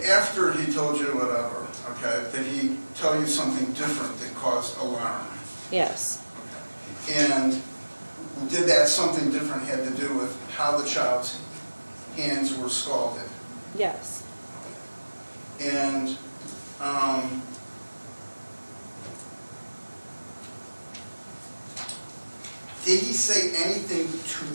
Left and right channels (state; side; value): inverted; both; correlation -1.00